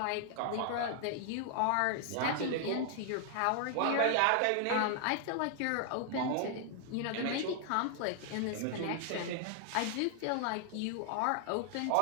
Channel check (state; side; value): different; both; correlation 0.00